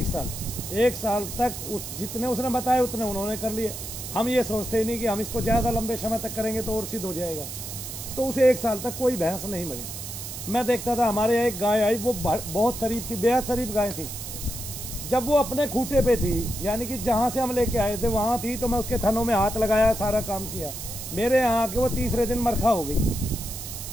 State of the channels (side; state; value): right; noise; hiss, 9 dB below the sound